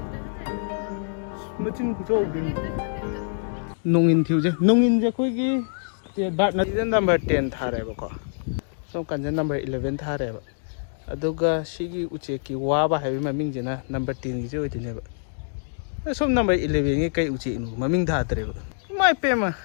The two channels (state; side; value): silent; right; digital silence